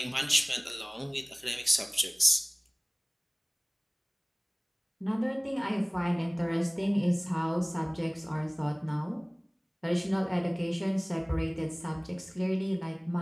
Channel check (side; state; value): both; identical; correlation 1.00